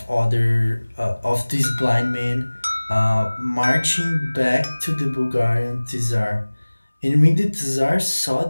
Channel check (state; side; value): inverted; both; correlation -1.00